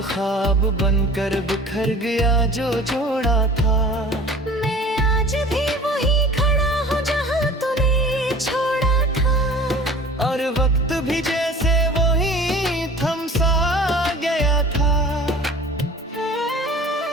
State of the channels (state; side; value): normal; both; correlation 0.44